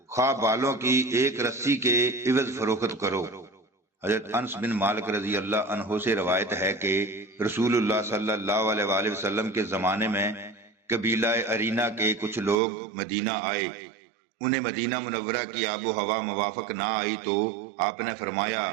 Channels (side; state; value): left; drops out; at 12.6 s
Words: خواہ بالوں کی ایک رسی کے عوض فروخت کرو۔ حضرت انس بن مالک رضی اللہ عنہ سے روایت ہے کہ رسول اللہ صلی اللہ علیہ وآلہ وسلم کے زمانے میں قبیلہ ارینا کے کچھ لوگ مدینہ آئے۔ انہیں مدینہ منورہ کی آب و ہوا موافق نہ آئی تو آپ نے فرمایا